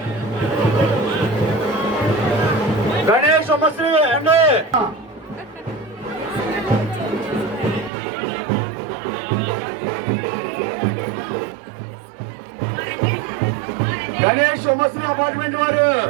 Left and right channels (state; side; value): drops out; left; at 7.9 s